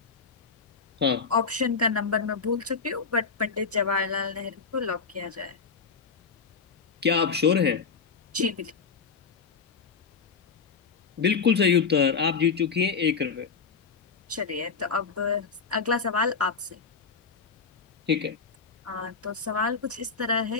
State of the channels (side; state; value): right; quieter; 5.3 dB